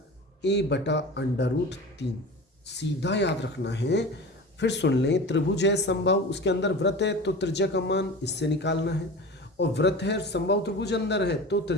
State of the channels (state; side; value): normal; both; correlation 0.34